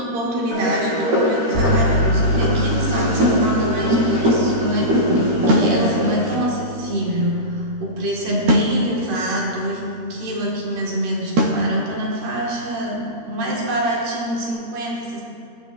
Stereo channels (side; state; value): left; late; 13 ms